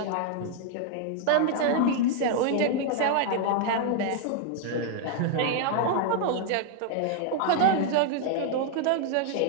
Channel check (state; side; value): different; both; correlation 0.00